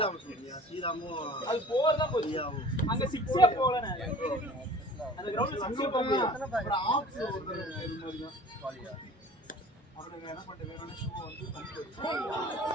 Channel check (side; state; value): both; normal; correlation 0.45